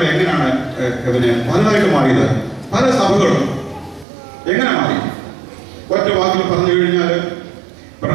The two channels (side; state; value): left; drops out; at 4.0 s